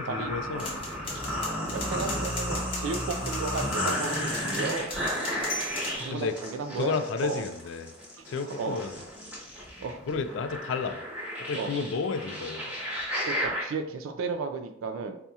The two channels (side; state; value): both; normal; correlation 0.12